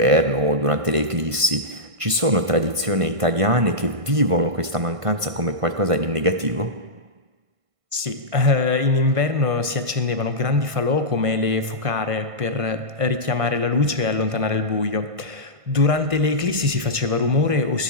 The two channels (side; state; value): left; late; 1.5 ms